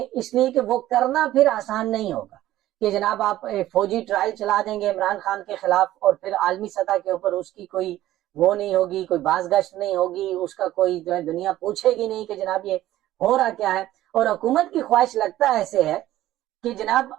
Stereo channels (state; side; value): quieter; left; 14.4 dB